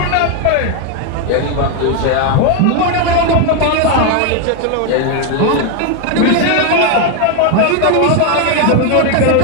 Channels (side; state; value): both; different; correlation 0.01